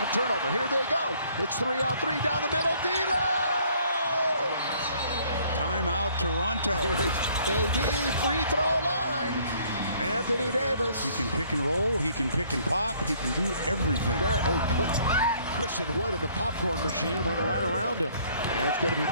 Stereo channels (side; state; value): both; inverted; correlation -0.60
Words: Turnover. Here they go. It's 3-on-3 down the middle. D'Lo! Timeout, Toronto. AD, free throw line. Anthony Davis. He can pick and roll. He can pick and pop. He can do everything. There, put Christian Wood in the popcorn machine, went right around him. And it's going to be